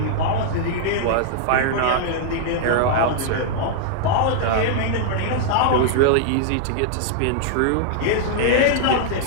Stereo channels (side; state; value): both; different; correlation -0.01